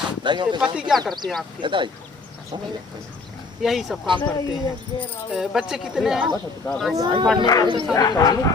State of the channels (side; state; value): right; quieter; 4.1 dB